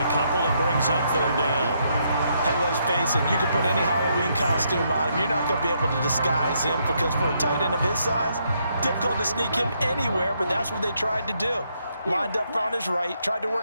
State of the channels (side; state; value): both; inverted; correlation -0.75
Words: a couple. It brings up third down. Hey, let's face it, you can put any Halloween costume on him. You're not going to be able to disguise him because for a tight end of his size, difficult to sneak him anywhere, but that's what they tried to do. Lined up on his right, tried to